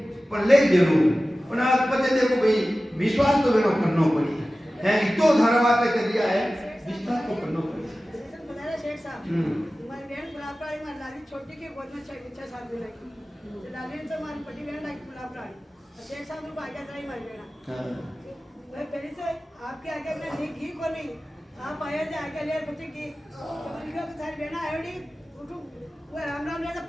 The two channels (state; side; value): normal; both; correlation 0.96